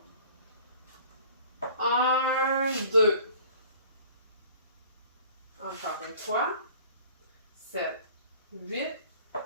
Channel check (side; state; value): both; inverted; correlation -0.49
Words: 1, 2. Encore une fois. 7, 8.